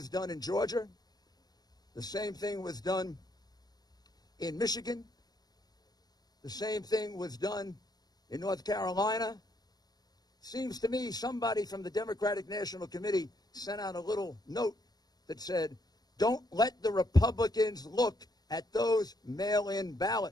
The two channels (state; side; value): late; right; 0.19 ms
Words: done in Georgia. The same thing was done in Michigan. The same thing was done in North Carolina. Seems to me somebody from the Democratic National Committee sent out a little note that said, don't let the Republicans look at those mail-in